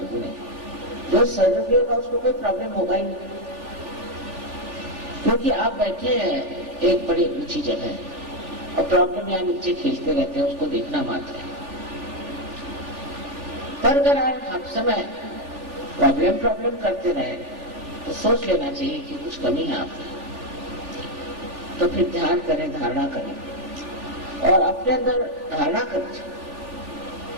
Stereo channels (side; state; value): left; late; 3.4 ms